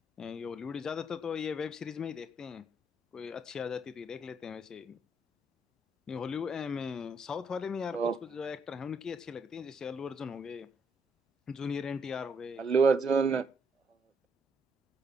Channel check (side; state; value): both; normal; correlation 0.73